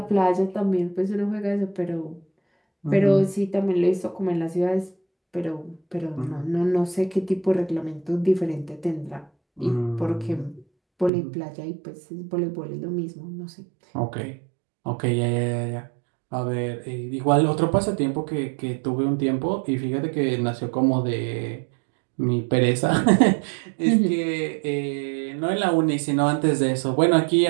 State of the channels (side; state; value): left; drops out; at 11.1 s